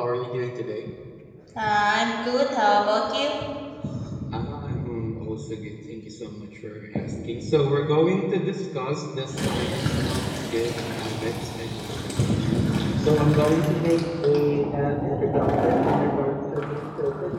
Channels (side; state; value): both; identical; correlation 1.00